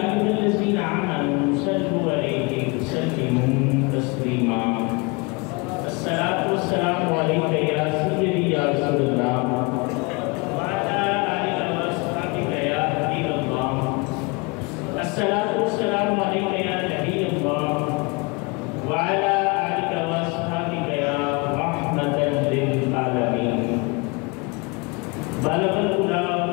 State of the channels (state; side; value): quieter; right; 28.8 dB